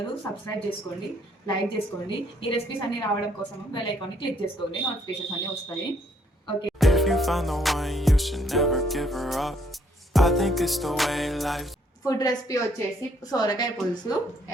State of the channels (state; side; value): normal; both; correlation 0.67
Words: సబ్స్క్రైబ్ చేసుకోండి, లైక్ చేసుకోండి. ఈ రెసిపీస్ అన్ని రావడం కోసం బెల్ ఐకాన్ని క్లిక్ చేసుకోండి, నోటిఫికేషన్స్ అన్ని వస్తాయి. ఓకే. ఫుడ్ రెసిపీ వచ్చేసి సోరకాయ పులుసు